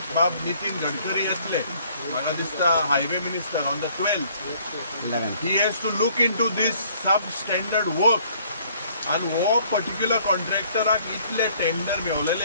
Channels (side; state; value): both; inverted; correlation -0.60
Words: बाब नितीन गडकरी येतले, म्हाका दिसता highway minister on the 12th, he has to look into this substandard work. आनी हो पर्टिक्युलर कॉन्ट्रॅक्टराक इतले टेंडर